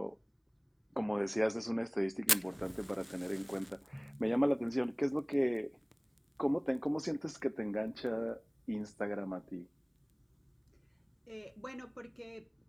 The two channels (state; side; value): identical; both; correlation 1.00